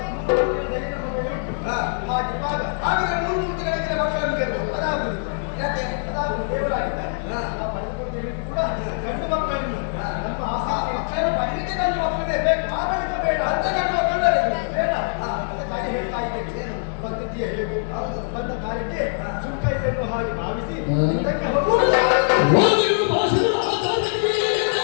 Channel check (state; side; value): silent; right; 63 dB below the other